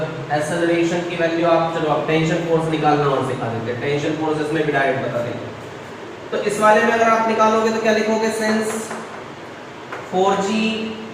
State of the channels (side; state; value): both; identical; correlation 1.00